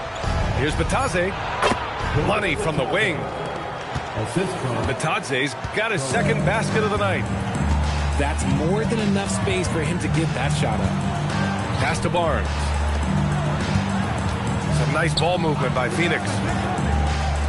Here's Batadze. Money from the wing. Batadze's got his second basket of the night. That's more than enough space for him to get that shot up. Pass to Barnes. Some nice ball movement by Phoenix.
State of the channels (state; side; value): identical; both; correlation 1.00